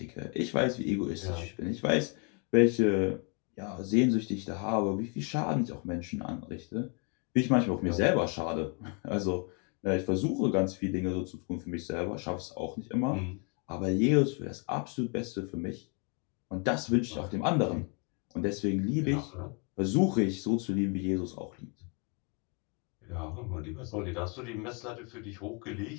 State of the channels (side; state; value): right; quieter; 36.1 dB